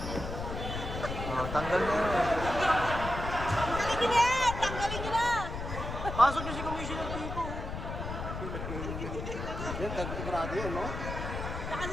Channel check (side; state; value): left; noise; rumble, 6 dB below the sound